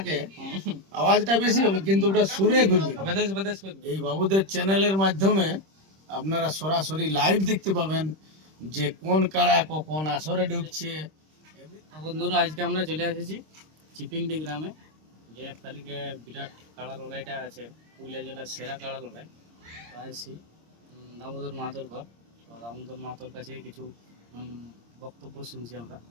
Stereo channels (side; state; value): left; late; 26 ms